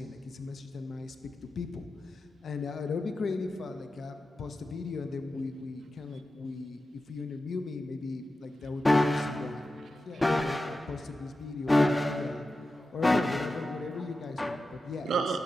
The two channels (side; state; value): both; normal; correlation 0.92